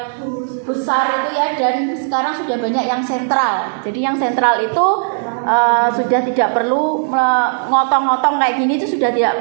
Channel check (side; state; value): left; silent; digital silence